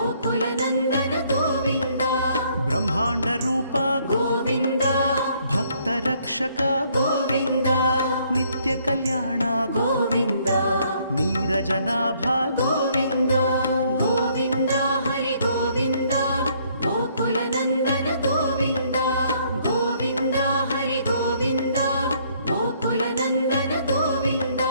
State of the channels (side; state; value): both; inverted; correlation -0.66